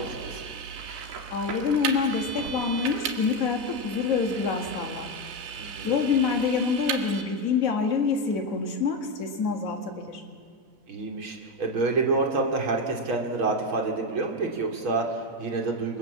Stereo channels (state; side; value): late; left; 3.9 ms